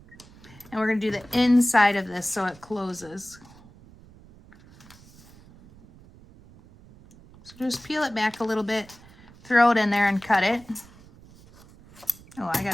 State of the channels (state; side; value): noise; right; rumble, 23 dB below the sound